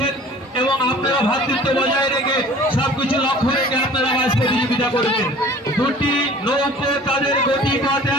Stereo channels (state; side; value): normal; both; correlation 0.47